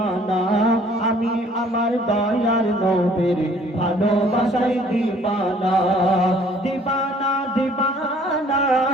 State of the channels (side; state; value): both; normal; correlation 0.57